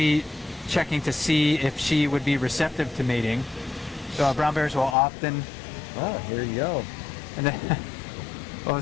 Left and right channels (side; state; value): right; drops out; at 5.0 s